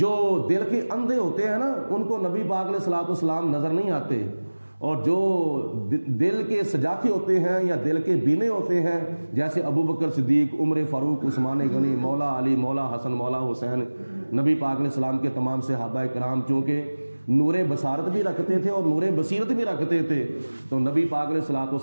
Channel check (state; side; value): inverted; both; correlation -1.00